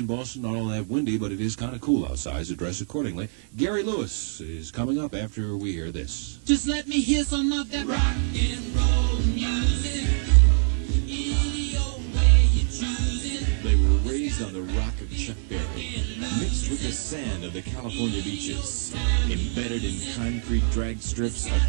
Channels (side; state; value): left; silent; 62 dB below the other